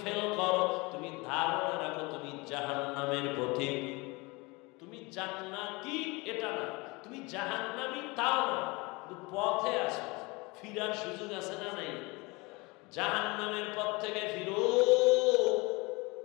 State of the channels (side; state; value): right; quieter; 25.7 dB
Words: ফেল করো, তুমি ধারণা রাখো তুমি জাহান্নামের পথিক। তুমি জান্নাতি এটা না, তুমি জাহান্নামী তাও না, কিন্তু পথে আসো, ফিরার সুযোগ আছে না নাই? জাহান্নামের পথ থেকে ফিরো।